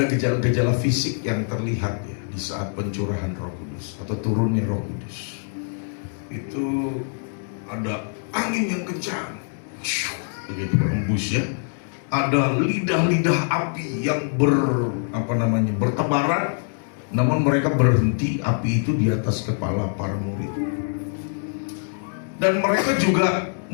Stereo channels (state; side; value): silent; right; 63 dB below the other